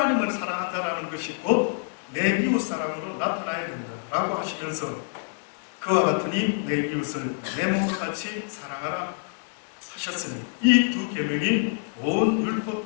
사랑한다라는 것이 곧 내 이웃 사랑으로 나타나야 된다 라고 하시면서 그와 같으니 내 이웃을 내 몸과 같이 사랑하라 하셨으니 이 두 계명이 온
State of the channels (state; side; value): silent; right; digital silence